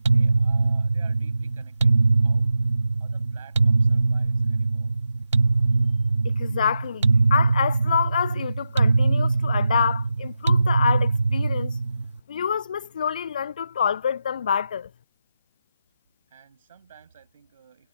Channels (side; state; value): both; inverted; correlation -0.89